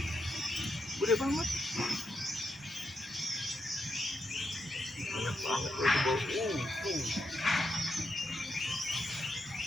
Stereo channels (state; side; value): normal; both; correlation 0.83